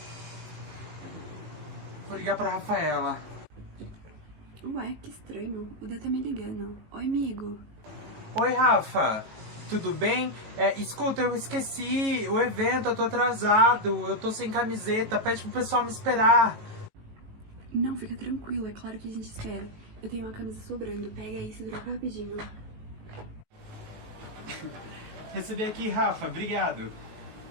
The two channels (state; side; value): late; left; 18 ms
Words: Vou ligar pra Rafaela. Ué, que estranho. O Dan tá me ligando. Oi, amigo. Oi, Rafa. Tudo bem? Escuta, eu esqueci o evento, eu tô atrasado. Eu tô sem camiseta. Pede pro pessoal me esperar. Não, fica tranquilo. É claro que a gente espera. Eu tenho uma camisa sobrando. Pega aí e se droga rapidinho. Recebi aqui, Rafa. Obrigado.